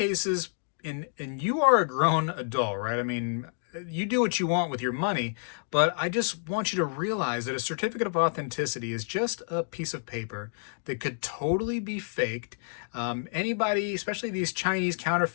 and you are a grown adult, right? I mean, you do what you want with your money, but I just want you to realize that a certificate of authenticity is just a piece of paper that could totally be faked. Anybody, especially these Chinese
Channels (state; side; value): silent; right; digital silence